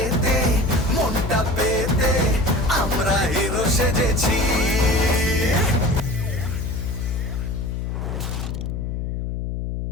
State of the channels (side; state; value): left; noise; hum, 3 dB below the sound